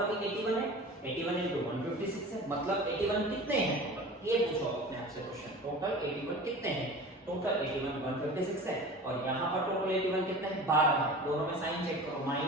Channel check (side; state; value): both; normal; correlation 0.38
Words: भी 81 है, 81 into 156 है, मतलब 81 कितने हैं टोटल, ये पूछो अपने आप से क्वेश्चन, टोटल 81 कितने हैं, टोटल 81 156 है, और यहाँ पर टोटल 81 कितने हैं, 12 है, दोनों में साइन चेक करो,